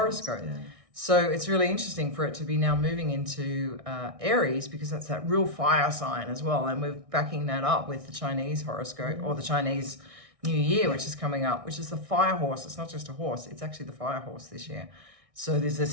Yeah. So it's really interesting for it to be now moving into Aries, because that's that real fire sign as well. And we're backing that up with the Chinese horoscope, or the Chinese New Year, which is coming up, which is the fire horse. It's not just a horse, it's actually the fire horse this year. So there's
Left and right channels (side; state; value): left; late; 1.6 ms